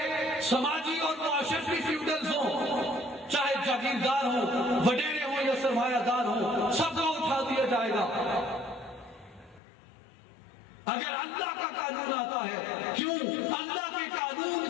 سماجی اور معاشرتی فیوڈلز ہوں، چاہے جاگیردار ہوں، وڈیرے ہوں یا سرمایہ دار ہوں، سب کو اٹھا دیا جائے گا. اگر اللہ کا قانون آتا ہے، کیوں اللہ کے قانون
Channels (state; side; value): drops out; right; at 9.6 s